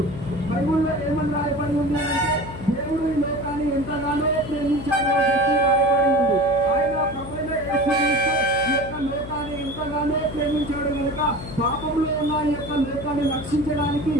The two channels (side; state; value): left; noise; hum, 11 dB below the sound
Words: బైబిల్లో ఏమని రాయబడి ఉంది అంటే దేవుడు ఈ లోకాన్ని ఎంతగానో ప్రేమించాడో రాయబడి ఉంది. ఆయన ప్రభువైన యేసు క్రీస్తు ఈ యొక్క లోకాన్ని ఎంతగానో ప్రేమించాడు కనుక పాపంలో ఉన్న ఈ యొక్క లోకాన్ని రక్షించడానికి